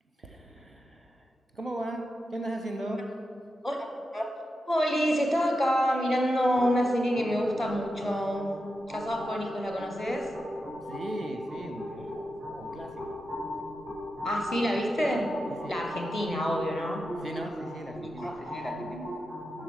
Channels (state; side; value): normal; both; correlation 0.89